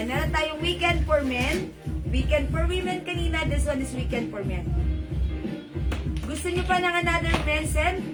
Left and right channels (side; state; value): both; identical; correlation 1.00